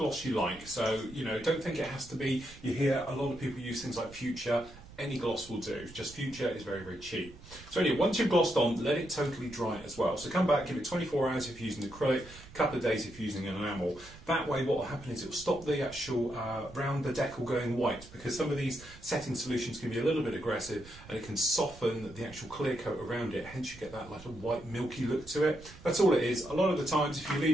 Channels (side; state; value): right; noise; rumble, 19 dB below the sound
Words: you like. So, you know, don't think it has to be. You hear a lot of people use things like Future. Any gloss will do, just Future is very, very cheap. So anyway, once you've glossed on, let it totally dry as well. So come back, give it 24 hours if you're using acrylic, a couple of days if you're using an enamel. That way what will happen is it will stop the actual round the decal going white, because some of these setting solutions can be a little bit aggressive and it can soften the actual clear coat around it, hence you get that like a white milky look to it. That's all it is. A lot of the times if you